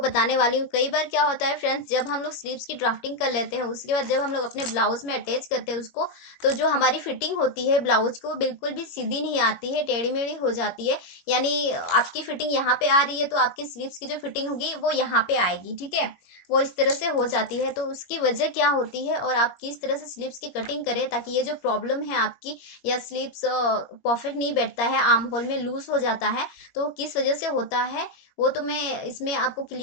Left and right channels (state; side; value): late; right; 21 ms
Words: बताने वाली हूँ। कई बार क्या होता है फ्रेंड्स, जब हम लोग स्लीव्स की ड्राफ्टिंग कर लेते हैं, उसके बाद जब हम लोग अपने ब्लाउज में अटैच करते हैं उसको, तो जो हमारी फिटिंग होती है ब्लाउज को, बिल्कुल भी सीधी नहीं आती है, टेढ़ी मेढ़ी हो जाती है। यानी आपकी फिटिंग यहाँ पे आ रही है तो आपकी स्लीव्स की जो फिटिंग होगी वो यहाँ पे आएगी, ठीक है। वो इस तरह से हो जाती है। तो उसकी वजह क्या होती है और आप किस तरह से स्लीव्स की कटिंग करें ताकि ये जो प्रॉब्लम है आपकी, या स्लीव्स परफेक्ट नहीं बैठता है, आर्म होल में लूज हो जाता है, तो किस वजह से होता है वो तो मैं इसमें आपको